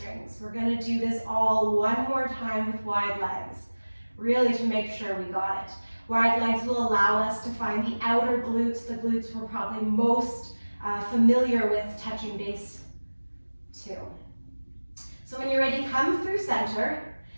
We're going to do this all one more time with wide legs, really to make sure we got it. Wide legs will allow us to find the outer glutes, the glutes we're probably most familiar with touching base to. So when you're ready, come through center.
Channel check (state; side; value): inverted; both; correlation -1.00